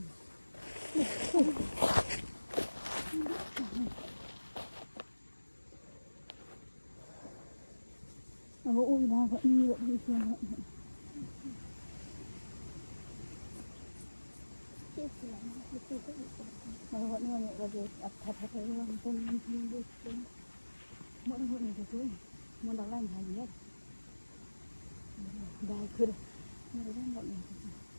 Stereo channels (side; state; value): both; inverted; correlation -1.00